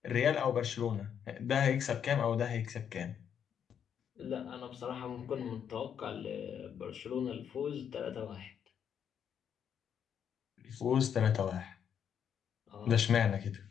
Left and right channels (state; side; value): quieter; right; 8.3 dB